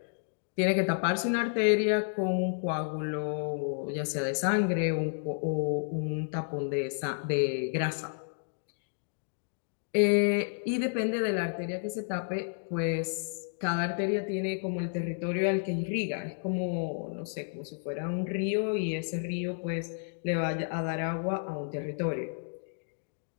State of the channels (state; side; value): silent; right; digital silence